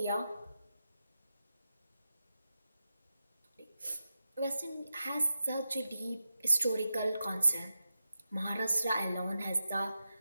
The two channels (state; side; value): inverted; both; correlation -0.91